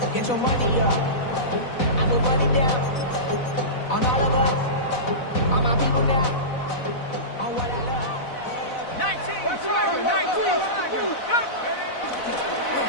Get your money up. I put money down. On all of us. On my people now. On what I love. 19.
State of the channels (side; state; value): right; late; 4.0 ms